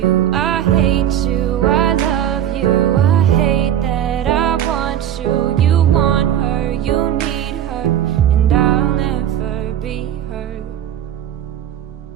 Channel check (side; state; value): left; quieter; 10.5 dB